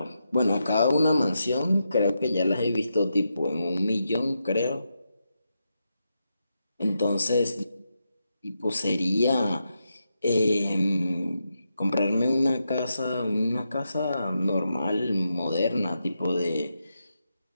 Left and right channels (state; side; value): inverted; both; correlation -0.86